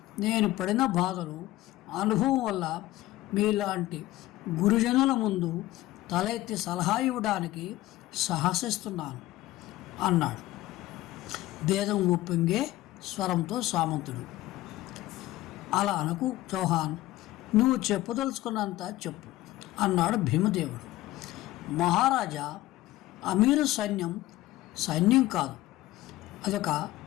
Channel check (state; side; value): quieter; right; 16.6 dB